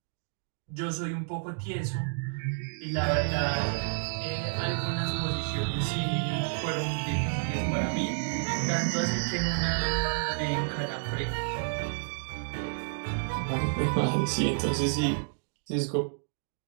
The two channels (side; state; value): left; silent; digital silence